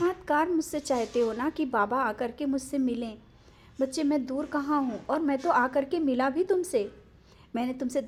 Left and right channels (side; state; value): both; identical; correlation 1.00